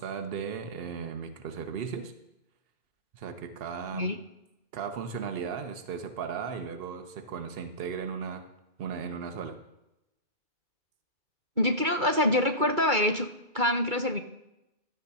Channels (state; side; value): late; left; 2.3 ms